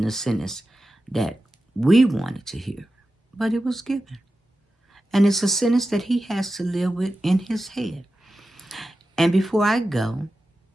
the sentence that we wanted to hear, but it was given. And it's a sentence that he has to live with in his head. And before I go,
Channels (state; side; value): normal; both; correlation 0.93